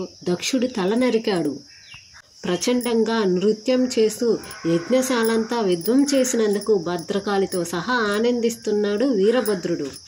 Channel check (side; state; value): both; identical; correlation 1.00